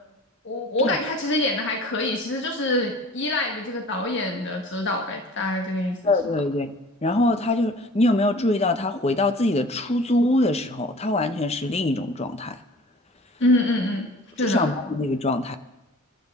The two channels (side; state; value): both; normal; correlation 0.45